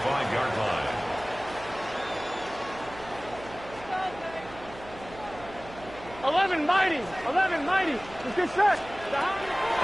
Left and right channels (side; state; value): right; noise; hum, 16 dB below the sound